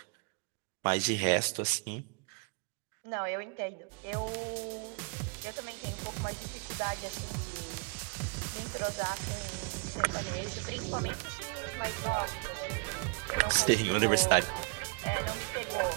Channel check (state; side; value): quieter; left; 34.8 dB